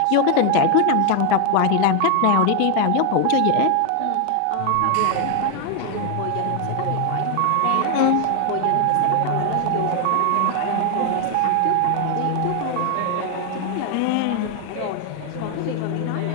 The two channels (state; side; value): different; both; correlation 0.00